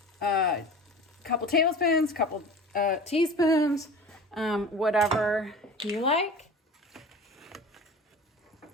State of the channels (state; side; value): normal; both; correlation 0.37